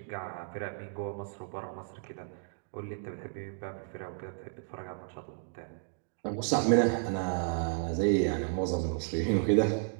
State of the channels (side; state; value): left; silent; digital silence